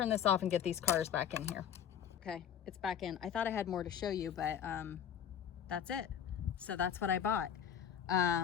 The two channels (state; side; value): quieter; right; 8.9 dB